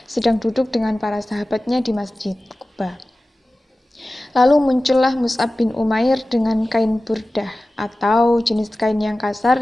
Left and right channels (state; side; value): normal; both; correlation 0.96